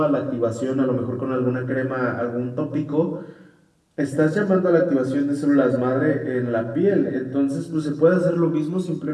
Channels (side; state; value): both; identical; correlation 1.00